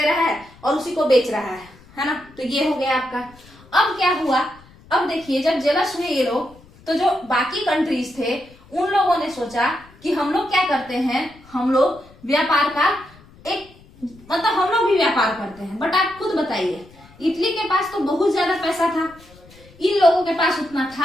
है और उसी को बेच रहा है ना। तो ये हो गया आपका। अब क्या हुआ? अब देखिए, जब जेलस हुए ये लोग, तो जो बाकी कंट्रीज थे उन लोगों ने सोचा कि हम लोग क्या करते हैं, हम लोग व्यापार का मतलब हम लोग भी व्यापार करते हैं। बट आप खुद बताइए, इटली के पास तो बहुत ज्यादा पैसा था, इन लोगों के पास उतना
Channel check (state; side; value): noise; left; rumble, 25 dB below the sound